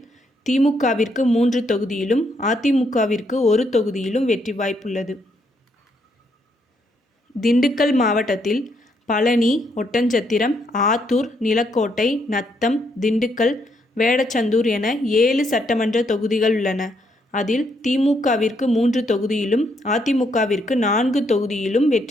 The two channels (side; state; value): both; normal; correlation 0.74